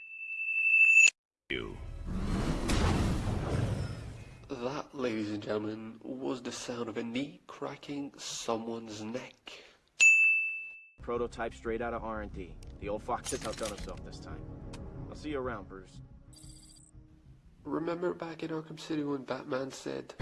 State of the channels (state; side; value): identical; both; correlation 1.00